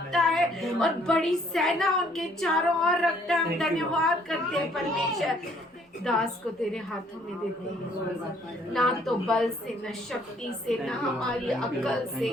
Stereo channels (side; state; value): both; normal; correlation 0.63